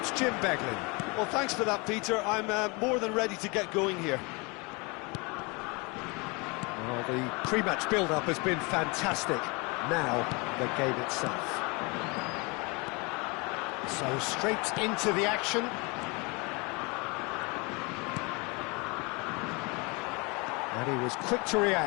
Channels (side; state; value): right; quieter; 28.6 dB